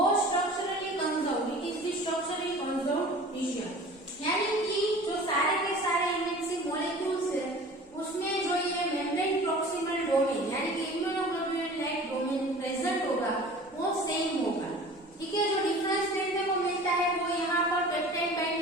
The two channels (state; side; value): normal; both; correlation 0.42